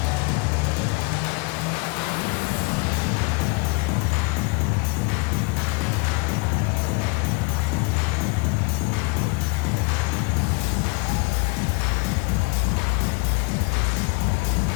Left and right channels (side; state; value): right; quieter; 28.7 dB